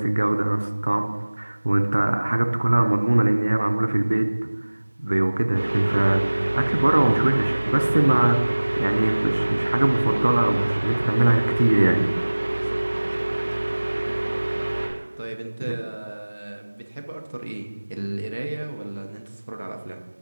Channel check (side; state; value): both; inverted; correlation -1.00